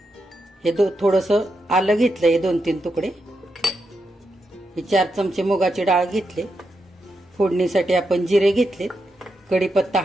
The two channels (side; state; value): both; normal; correlation 0.85